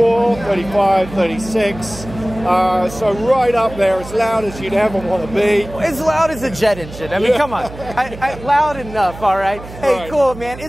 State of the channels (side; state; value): right; noise; hum, 15 dB below the sound